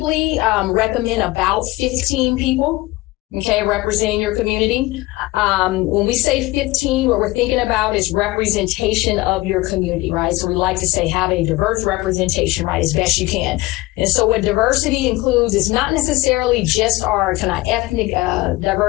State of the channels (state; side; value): quieter; right; 20.1 dB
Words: recommend about 15 people, okay, representing your community. When we say 15, what we're thinking about is representation of your community, right? So we like to say have a diverse representation, right, as best you can. And so what diversity includes is not necessarily just our kind of ethnic